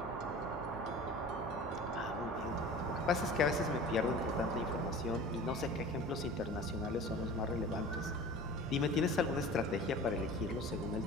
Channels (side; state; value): both; normal; correlation 0.39